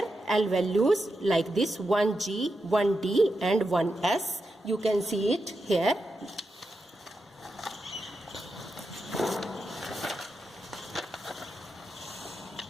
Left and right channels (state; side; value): normal; both; correlation 0.87